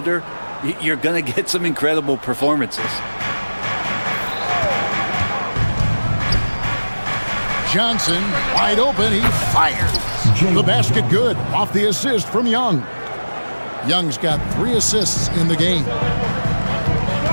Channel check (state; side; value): inverted; both; correlation -1.00